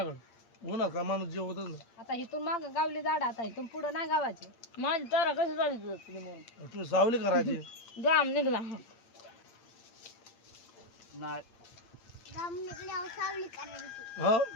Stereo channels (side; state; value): right; late; 8.7 ms